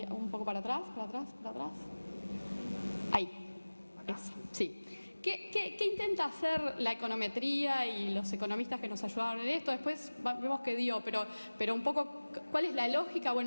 un poco para atrás. Ahí, esa, sí. ¿Qué intenta hacer la econometría y los economistas que nos ayudaron en esto? Después vemos que dio, pero un poco, ¿cuál es la lógica?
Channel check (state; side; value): inverted; both; correlation -1.00